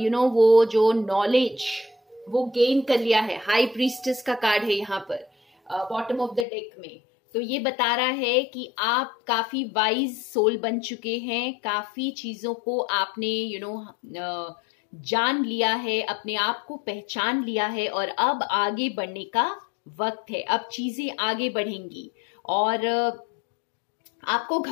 वो जो नॉलेज वो गेन कर लिया है। हाई प्रीस्टेस का कार्ड है यहाँ पर बॉटम ऑफ द डेक में। तो ये बता रहा है कि आप काफी वाइज सोल बन चुके हैं, काफी चीजों को आपने जान लिया है, अपने आप को पहचान लिया है और अब आगे बढ़ने का वक्त है। अब चीजें आगे बढ़ेंगी और आपको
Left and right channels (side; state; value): right; drops out; at 6.5 s